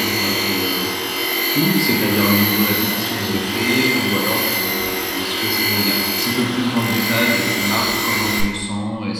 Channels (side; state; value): both; identical; correlation 1.00